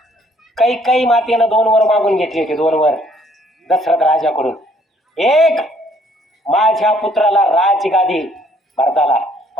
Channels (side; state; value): both; normal; correlation 0.63